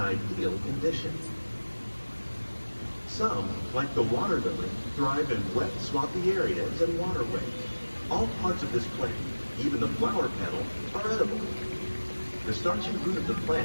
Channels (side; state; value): both; inverted; correlation -1.00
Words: conditions. Some, like the water lily, thrive in wet, swampy areas and waterways. All parts of this plant, even the flower petals, are edible. The starchy root of the